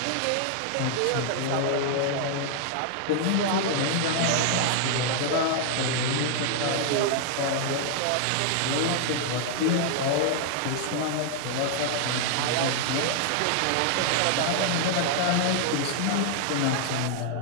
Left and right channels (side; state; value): both; different; correlation 0.00